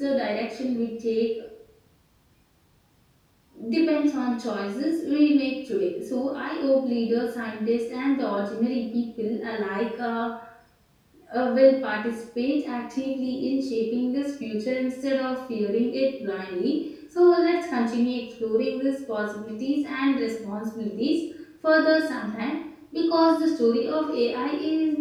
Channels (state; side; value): identical; both; correlation 1.00